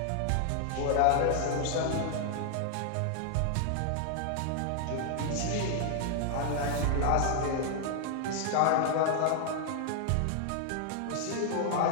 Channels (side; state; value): both; different; correlation 0.00